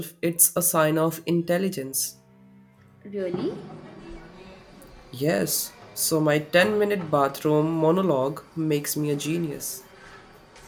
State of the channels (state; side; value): identical; both; correlation 1.00